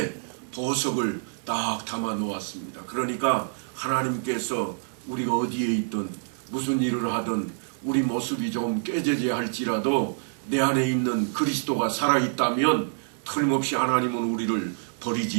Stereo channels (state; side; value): silent; left; digital silence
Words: 보석을 딱 담아 놓았습니다. 그러니까 하나님께서 우리가 어디에 있든 무슨 일을 하든 우리 모습이 좀 깨져야 할지라도 내 안에 있는 그리스도가 살아있다면 틀림없이 하나님은 우리를